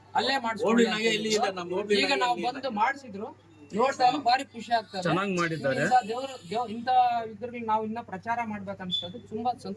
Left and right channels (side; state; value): both; identical; correlation 1.00